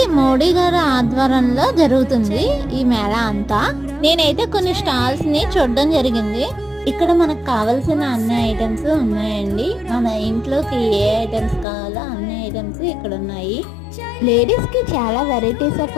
మోడీ గారి ఆధ్వర్యంలో జరుగుతుంది ఈ మేళ అంతా. నేనైతే కొన్ని స్టాల్స్ ని చూడడం జరిగింది. ఇక్కడ మనకు కావాల్సిన అన్ని ఐటమ్స్ ఉన్నాయండి. మన ఇంట్లోకి ఏ ఐటమ్స్ కావాలో అన్ని ఐటమ్స్ ఇక్కడ ఉన్నాయి. లేడీస్ కి చాలా వెరైటీస్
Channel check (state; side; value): drops out; right; at 11.7 s